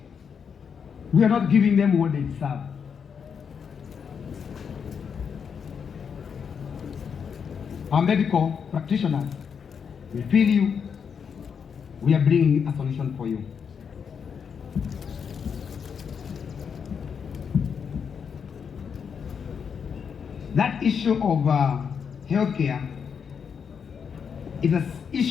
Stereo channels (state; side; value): quieter; right; 6.7 dB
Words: we are not giving them what they deserve. Our medical practitioners, we feel you. We are bringing a solution for you. That issue of healthcare is an